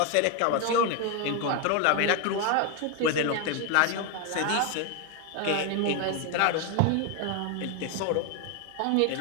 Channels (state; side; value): different; both; correlation 0.01